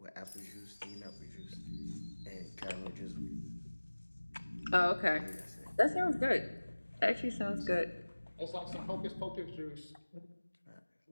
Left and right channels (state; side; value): inverted; both; correlation -1.00